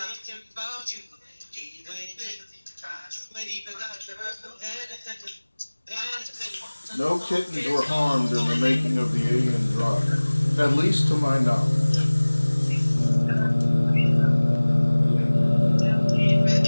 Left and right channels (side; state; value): both; inverted; correlation -1.00